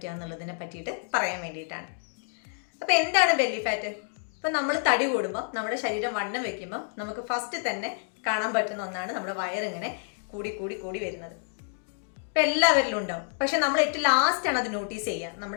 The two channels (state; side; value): silent; right; digital silence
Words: എന്നുള്ളതിനെ പറ്റിയിട്ട് പറയാൻ വേണ്ടിയിട്ടാണ്. അപ്പോൾ എന്താണ് ബെല്ലി ഫാറ്റ്? ഇപ്പം നമ്മൾ തടി കൂടുമ്പോൾ നമ്മുടെ ശരീരം വണ്ണം വെക്കുമ്പോൾ നമുക്ക് ഫസ്റ്റ് തന്നെ കാണാൻ പറ്റുന്ന ഒന്നാണ് നമ്മുടെ വയറിങ്ങനെ കൂടി കൂടി കൂടി വരുന്നത്. ഇപ്പം എല്ലാവരിലും ഉണ്ടാവും, പക്ഷെ നമ്മൾ ഏറ്റവും ലാസ്റ്റാണ് അത് നോട്ടീസ് ചെയ്യുക,